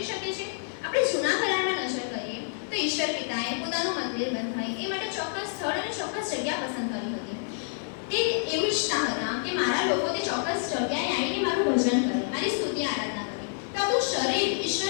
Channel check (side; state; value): right; silent; 55 dB below the other